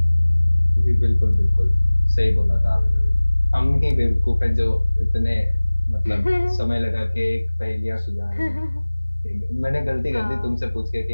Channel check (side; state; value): both; inverted; correlation -1.00